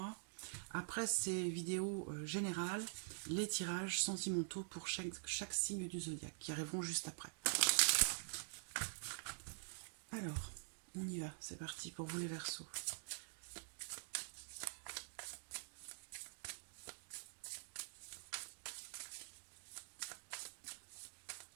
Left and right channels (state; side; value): silent; left; digital silence